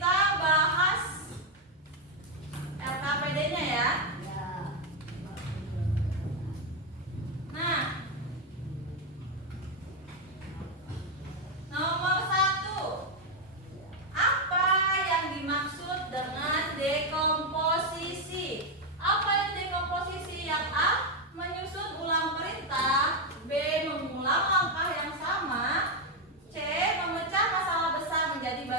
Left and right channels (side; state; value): both; normal; correlation 0.04